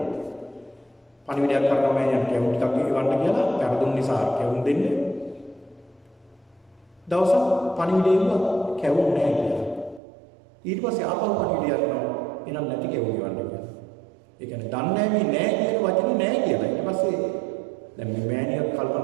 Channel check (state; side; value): drops out; left; at 10.0 s